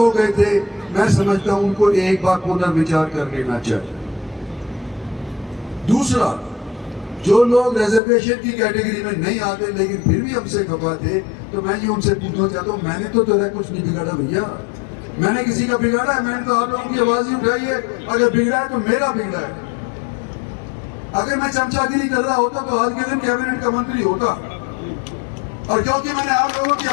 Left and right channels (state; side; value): drops out; right; at 8.0 s